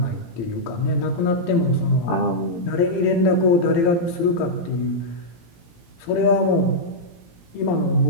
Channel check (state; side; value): late; right; 17 ms